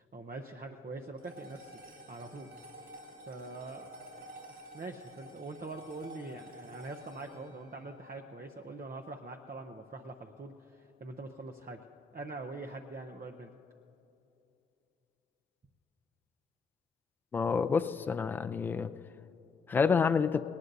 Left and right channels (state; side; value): quieter; right; 4.2 dB